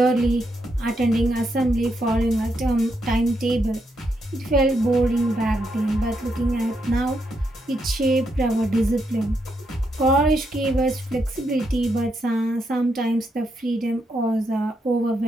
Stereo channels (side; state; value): both; normal; correlation 0.80